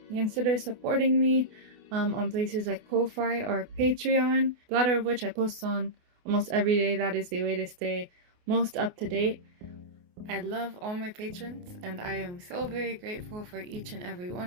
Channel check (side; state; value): left; late; 28 ms